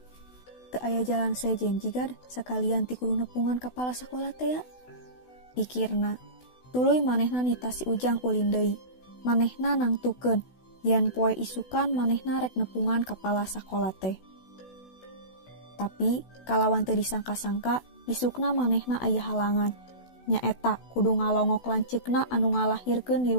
Teu aya jalan sejen jigad sakalian ti kudu nepungan kapala sakola teh ya. Pikirna, tuluy manehna nita si Ujang ulin deui. Manehna nangtukeun yen poe isukan manehna rek nepungan kapala sakola teh. Tapi kalawan teu disangka-sangka isukna manehna aya halangan. Nyaeta kudu ngalongok lanceukna anu ngalahirkeun di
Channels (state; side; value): late; right; 16 ms